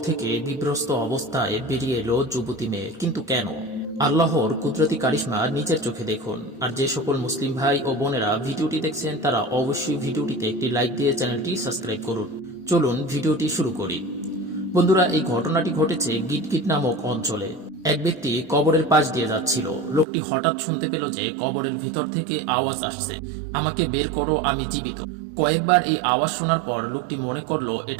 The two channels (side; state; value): left; drops out; at 20.1 s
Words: থেকে বিভ্রস্ত অবস্থায় বেরিয়ে এলো যুবতী মেয়ে, কিন্তু কেন? আল্লাহর কুদরতি কারিশমা নিজের চোখে দেখুন। আর যে সকল মুসলিম ভাই ও বোনেরা ভিডিওটি দেখছেন তারা অবশ্যই ভিডিওটিতে একটি লাইক দিয়ে চ্যানেলটি সাবস্ক্রাইব করুন। চলুন ভিডিওটি শুরু করি। বন্ধুরা, এই ঘটনাটি ঘটেছে গিটগিট নামক অঞ্চলে। এক ব্যক্তি কবরের পাশ দিয়ে যাচ্ছিল। লোকটি হঠাৎ শুনতে পেল যে কবরের ভিতর থেকে আওয়াজ আসছে, আমাকে বের করো, আমি জীবিত। কয়েকবার এই আওয়াজ শোনার পর লোকটি মনে করলো